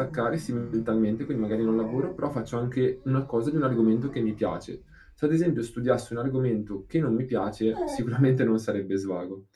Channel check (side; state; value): both; identical; correlation 1.00